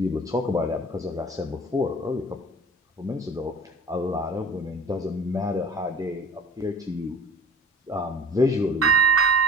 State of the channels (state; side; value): normal; both; correlation 0.43